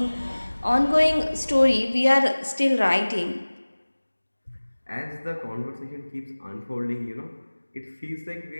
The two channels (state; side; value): inverted; both; correlation -1.00